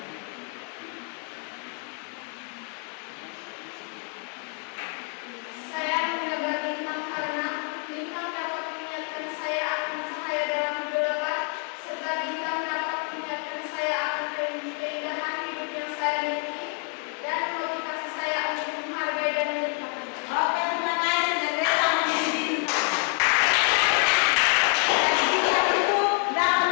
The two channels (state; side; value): quieter; right; 34.8 dB